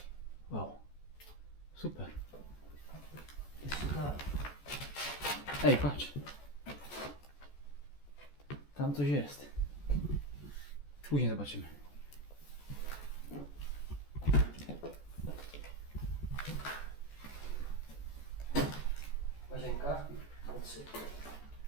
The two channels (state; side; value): late; right; 14 ms